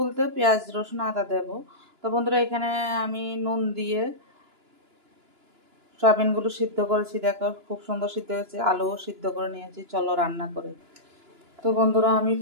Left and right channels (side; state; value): left; late; 2.9 ms